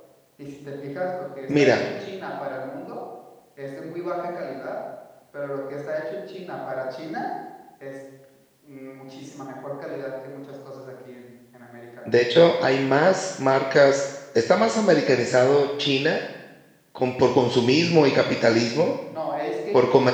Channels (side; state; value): both; identical; correlation 1.00